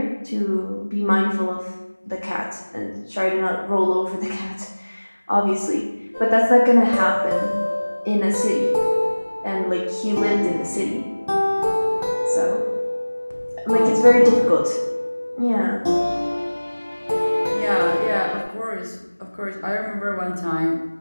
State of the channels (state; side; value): inverted; both; correlation -1.00